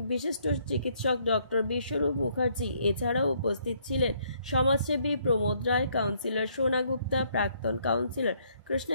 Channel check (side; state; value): both; inverted; correlation -0.68